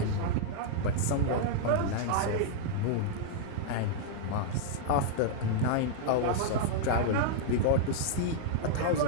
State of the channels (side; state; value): both; different; correlation -0.01